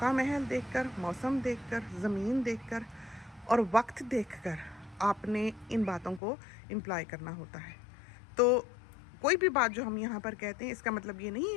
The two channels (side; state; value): right; drops out; at 6.2 s